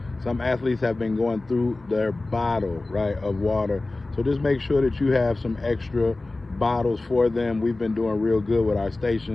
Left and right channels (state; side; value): quieter; right; 3.1 dB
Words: Some athletes have been going through their bottle, right, of water. So just make sure that you have some extra bottles for them. We've been doing real good with our